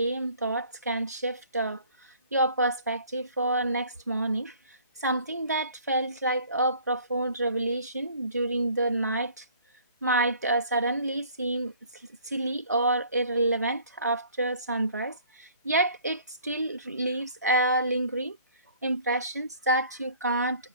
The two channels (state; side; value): inverted; both; correlation -0.54